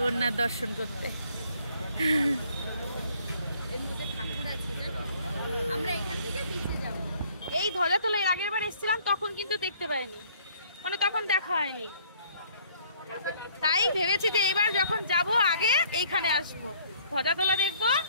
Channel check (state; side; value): inverted; both; correlation -0.60